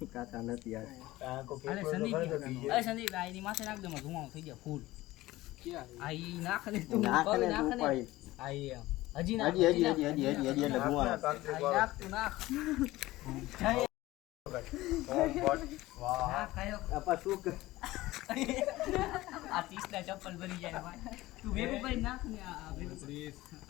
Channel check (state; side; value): quieter; right; 17.8 dB